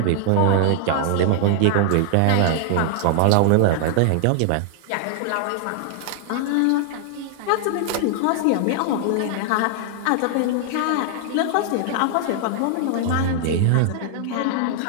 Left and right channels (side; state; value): both; different; correlation 0.00